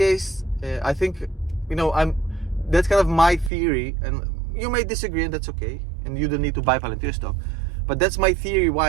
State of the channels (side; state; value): left; drops out; at 3.5 s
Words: I think, that's kind of my theory, and you may disagree, and that's okay, and you don't need to buy Palantir stock. But that's my theory why